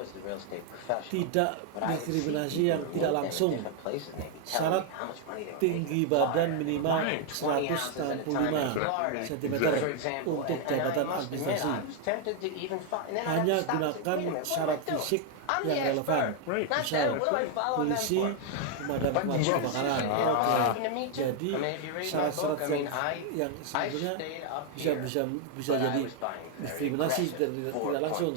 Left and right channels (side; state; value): both; different; correlation 0.00